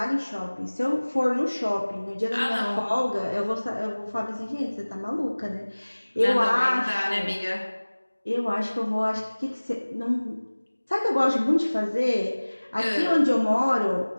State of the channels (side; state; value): both; inverted; correlation -1.00